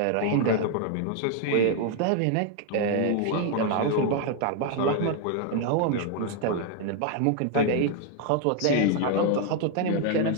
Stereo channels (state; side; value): different; both; correlation 0.01